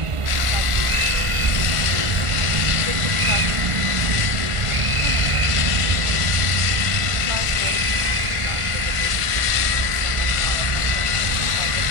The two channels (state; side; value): late; left; 1.4 ms